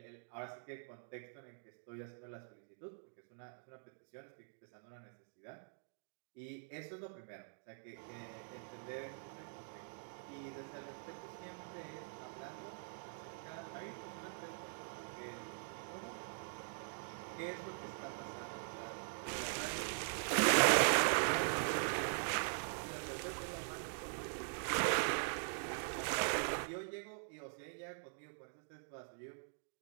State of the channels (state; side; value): silent; left; digital silence